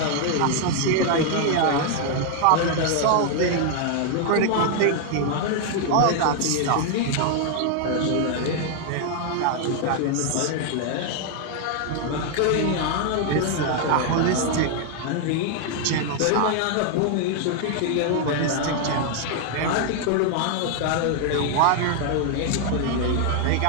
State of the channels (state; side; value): different; both; correlation 0.00